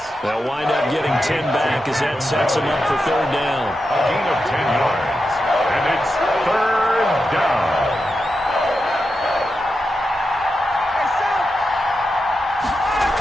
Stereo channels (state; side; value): normal; both; correlation 0.88